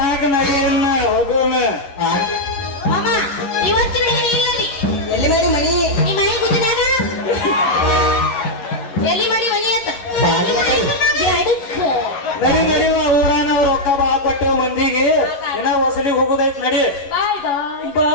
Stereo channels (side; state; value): right; late; 11 ms